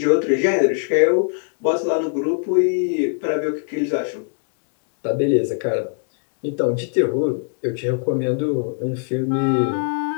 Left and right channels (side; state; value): right; silent; 60 dB below the other